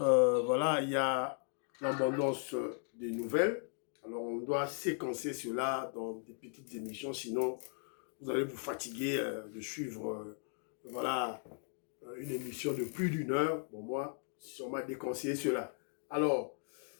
il y a l'abondance des nouvelles. Alors on doit séquencer cela dans des petites émissions, sinon vous allez vous fatiguer de suivre voilà, une émission de plus d'une heure. Bon, moi, si on m'a déconseillé cela. Alors,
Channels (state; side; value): silent; right; 53 dB below the other